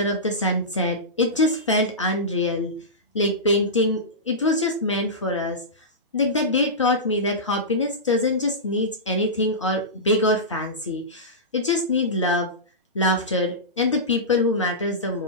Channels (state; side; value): normal; both; correlation -0.16